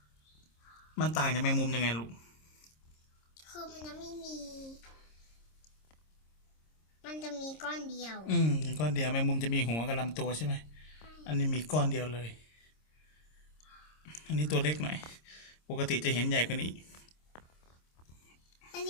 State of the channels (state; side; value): late; right; 26 ms